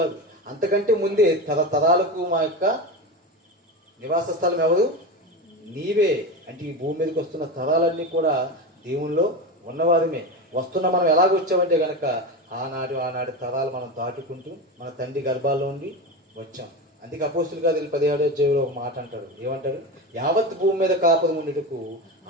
అంతకంటే ముందే తరతరాలకు మా యొక్క నివాస స్థలం ఎవరు? నీవే. అంటే ఈ భూమి మీదకి వస్తున్న తరాలన్నీ కూడా దేవునిలో ఉన్నవారమే. వస్తున్న మనం ఎలాగొచ్చామంటే కనుక ఆనాడు తరాలు మనం దాటుకుంటూ మన తండ్రి గర్భాల్లో ఉండి వచ్చాం. అందుకే అపోస్తుల కార్యాలు 17వ అధ్యాయంలో ఒక మాట అంటాడు. ఏమంటాడు? యావత్ భూమి మీద కాపురం ఉండేటకు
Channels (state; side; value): normal; both; correlation 0.21